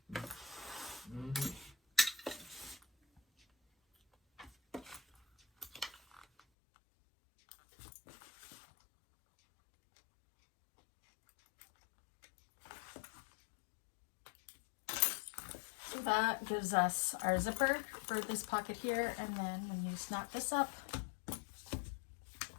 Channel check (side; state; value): right; drops out; at 6.4 s